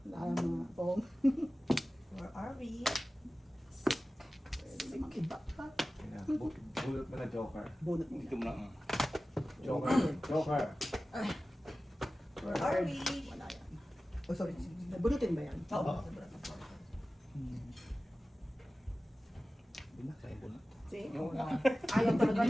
Alam mo, Pong. Where are we? Bunot mo na Joker. Bunot mo. Dito mo lang. Joker. Joker. Where are we? Wala yan. Oh, sorry. Bunutin ba yan? Oo. See? Ayaw talaga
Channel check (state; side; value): normal; both; correlation 0.96